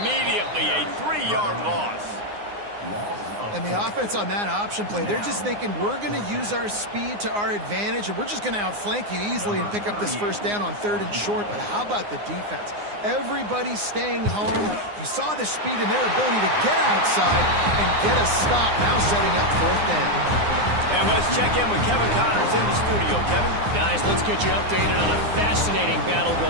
A 3-yard loss. And the offense on that option play, they're just thinking we're going to use our speed to our advantage, and we're just going to outflank you easily and pick up this first down on 3rd and short. But how about the defense? Everybody's staying home. You saw the speed and their ability to get outside and get a stop, now setting up 4th down. And let's check in with Kevin Connors in the studio. Kevin? Guys, let's get you updated on a fascinating battle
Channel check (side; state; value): left; late; 9.7 ms